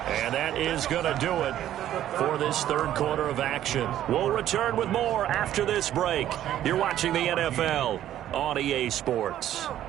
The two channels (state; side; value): quieter; left; 12.1 dB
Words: And that is going to do it for this third quarter of action. We'll return with more after this break. You're watching the NFL on EA Sports.